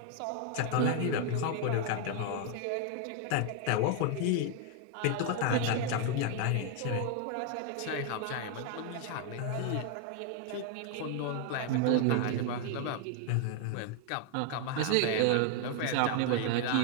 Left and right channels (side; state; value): both; different; correlation 0.00